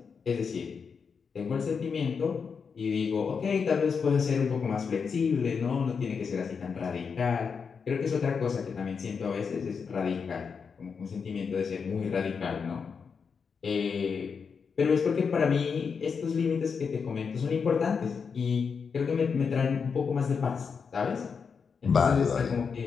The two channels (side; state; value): right; quieter; 5.9 dB